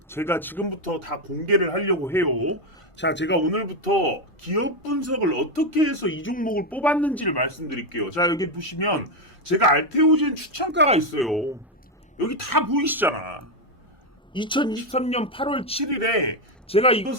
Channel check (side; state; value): both; normal; correlation 0.06